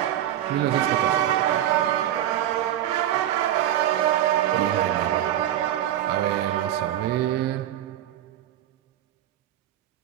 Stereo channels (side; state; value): left; quieter; 12.1 dB